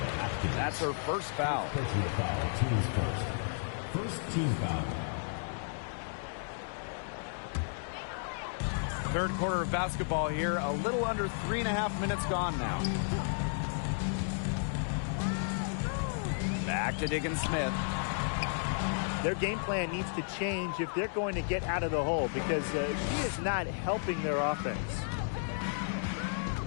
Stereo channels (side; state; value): right; silent; digital silence